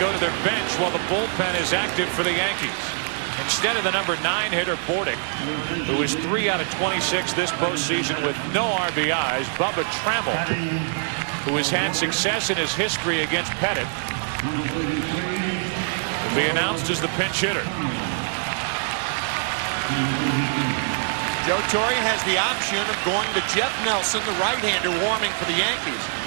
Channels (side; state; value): left; silent; digital silence